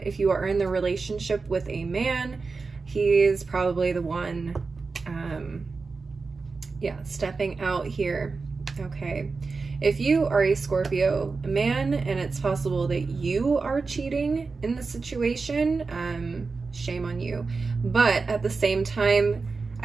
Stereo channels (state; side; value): quieter; left; 4.3 dB